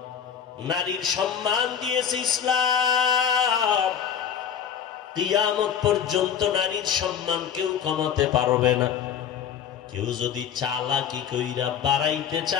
নারীর সম্মান দিয়েছে ইসলাম, কিয়ামত পর্যন্ত নারীর সম্মান কেউ কমাতে পারবে না। কেউ যদি চালাকি কইরা বাড়াইতে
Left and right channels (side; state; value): right; quieter; 8.4 dB